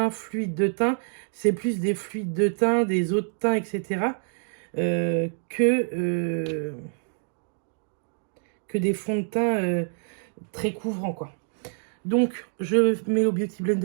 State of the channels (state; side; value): silent; left; digital silence